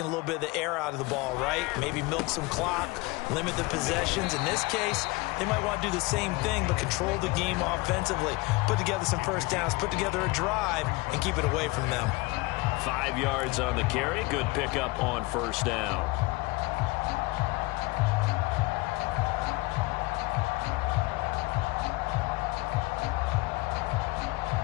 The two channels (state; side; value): quieter; right; 22.7 dB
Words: a little bit of the air out of the ball, right? Maybe milk some clock, limit the possessions. In this case, they might want to do the same thing, but control the game offensively. Put together some first downs, put together a drive, and keep it away from them. 5 yards on the carry. Good pickup on first down.